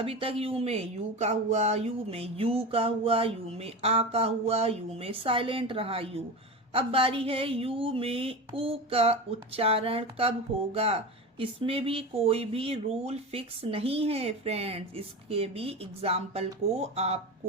तक यू में यू का हुआ, यू में यू का हुआ, यू में आ का हुआ, यू में साइलेंट रहा यू। अब बारी है यू में ऊ का उच्चारण कब होगा। इसमें भी कोई भी रूल फिक्स नहीं है फ्रेंड्स, इसके भी एग्जाम्पल को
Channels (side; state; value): both; normal; correlation 0.25